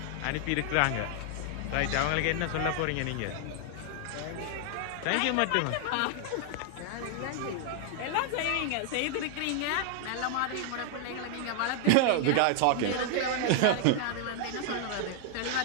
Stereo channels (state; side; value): different; both; correlation 0.00